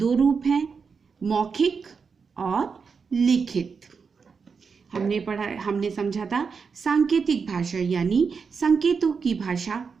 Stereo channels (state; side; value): quieter; left; 5.5 dB